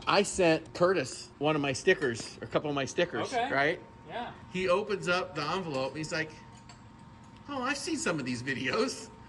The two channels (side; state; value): both; identical; correlation 1.00